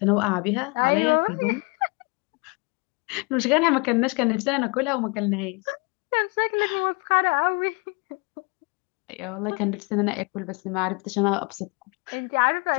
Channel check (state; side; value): quieter; right; 30.4 dB